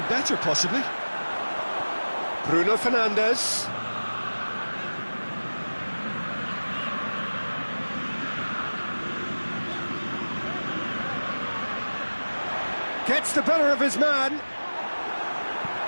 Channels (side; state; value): both; inverted; correlation -1.00